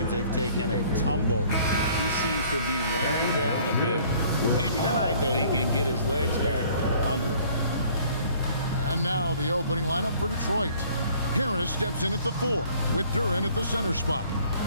they've taken a tumble. He seems to be wearing down a bit. Maybe tonight, though, he can get his legs back under him. And now the opening lineup for Detroit. Harris steps in at the 4 with Duren at the center spot.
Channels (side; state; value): both; inverted; correlation -0.56